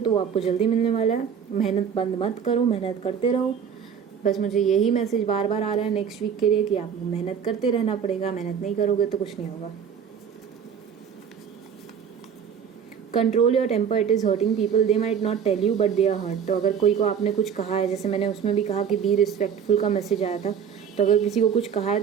वो आपको जल्दी मिलने वाला है। मेहनत बंद मत करो, मेहनत करते रहो। बस मुझे यही मैसेज बार बार आ रहा है नेक्स्ट वीक के लिए कि आपको मेहनत करते रहना पड़ेगा, मेहनत नहीं करोगे तो कुछ नहीं होगा। Control your temper, it is hurting people, they might not tell you but they are hurt. तो अगर कोई को आपने कुछ कहा है, जैसे मैंने उसमें भी कहा कि बी रिस्पेक्टफुल का मैसेज आया था, तो अगर किसी को कुछ कहा है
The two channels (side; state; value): left; quieter; 7.5 dB